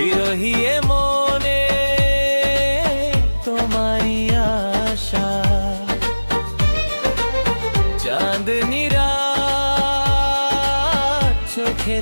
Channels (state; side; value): inverted; both; correlation -1.00